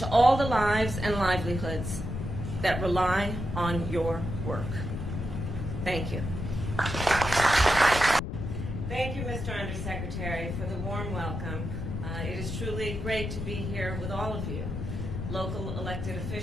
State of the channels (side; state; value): left; noise; rumble, 4 dB below the sound